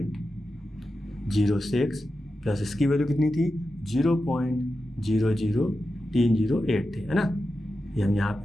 प्लस इसकी वैल्यू कितनी थी, 0.00308 थे, है ना। ये हम यहाँ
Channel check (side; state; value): both; normal; correlation 0.91